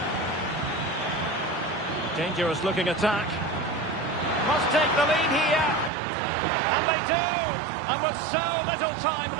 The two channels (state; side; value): drops out; left; at 5.9 s